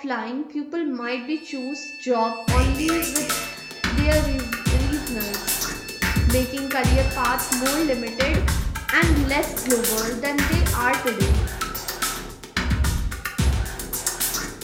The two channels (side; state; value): both; identical; correlation 1.00